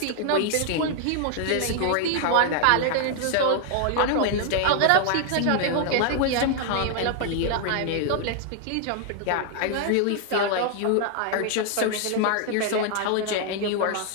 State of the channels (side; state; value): both; different; correlation 0.00